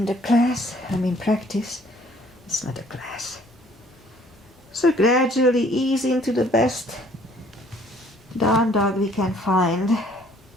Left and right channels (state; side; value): normal; both; correlation 0.59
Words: the class. Practice. It's not a class. So gradually ease into the best down dog we can find